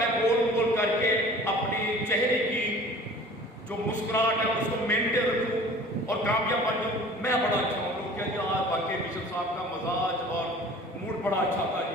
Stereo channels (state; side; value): normal; both; correlation 0.45